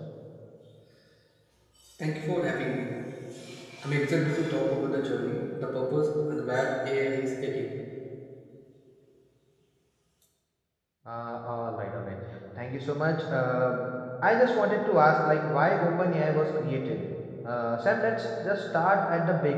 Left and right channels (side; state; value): both; identical; correlation 1.00